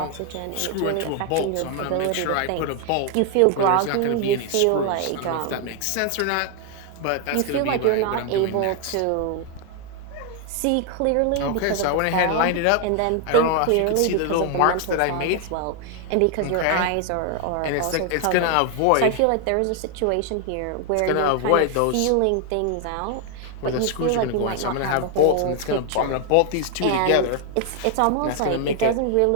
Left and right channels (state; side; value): different; both; correlation 0.00